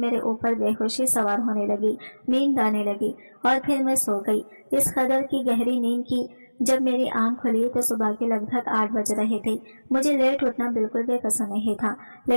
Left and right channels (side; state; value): both; inverted; correlation -1.00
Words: ऊपर बेहोशी सवार होने लगी, नींद आने लगी और फिर मैं सो गई। इस कदर की गहरी नींद की जब मेरी आंख खुली तो सुबह के लगभग 8 बज रहे थे। मुझे लेट उठना बिल्कुल भी पसंद नहीं था,